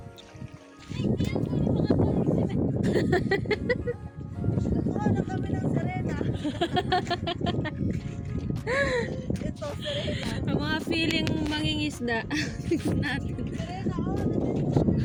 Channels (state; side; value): identical; both; correlation 1.00